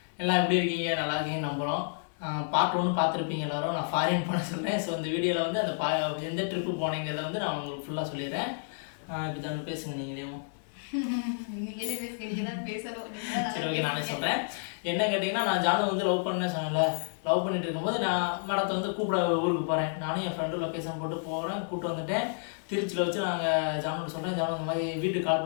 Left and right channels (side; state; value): right; silent; digital silence